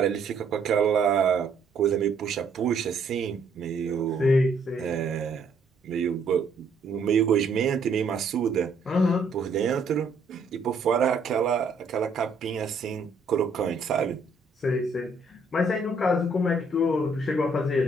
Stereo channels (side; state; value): left; quieter; 3.2 dB